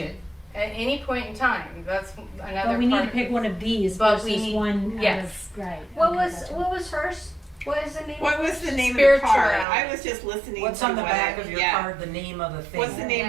at any point in time. That's another But we need part to of pick it. one of these But we versus need- one yes. out of, right. What okay, was gotcha. what was hers? What is the name? What was the name of the Spirituality. card? I was just listening What's to on the what back it- of your yeah. card, the name of the thing? What's the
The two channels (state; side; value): drops out; left; at 9.7 s